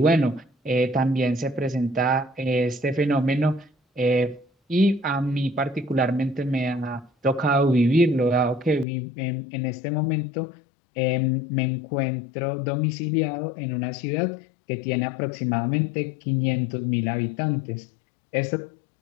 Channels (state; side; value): drops out; right; at 8.8 s